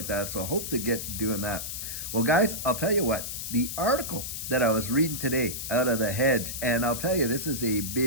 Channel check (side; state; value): left; noise; hiss, 6 dB below the sound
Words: that. So I hope to get doing that. Well, guys, I'll tell you what, the article that I was reading today out of The Hedge, and I'll tell you, this is a